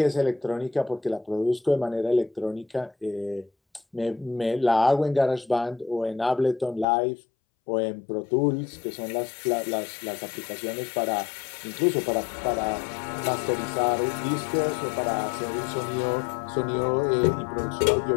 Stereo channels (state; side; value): drops out; right; at 6.9 s